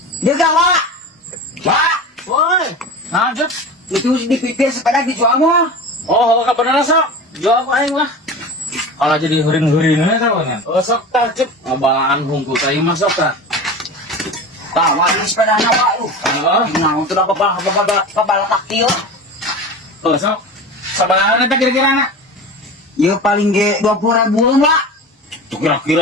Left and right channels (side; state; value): both; normal; correlation 0.31